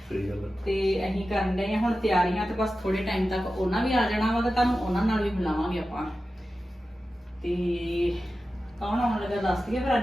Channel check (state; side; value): normal; both; correlation 0.93